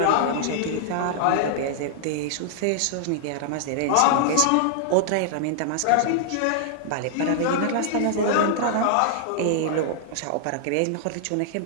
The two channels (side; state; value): both; different; correlation -0.01